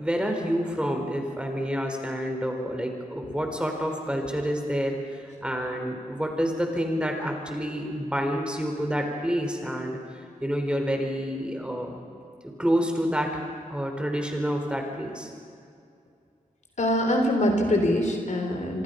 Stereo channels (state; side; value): normal; both; correlation 0.81